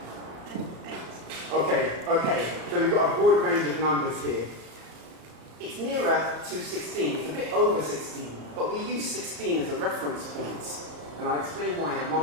8. Okay. So we've got a broad range of numbers here. It's nearer to 16. It's a bit over 16. But we use 16 as a reference point. And I'll explain why in a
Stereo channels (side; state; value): left; late; 34 ms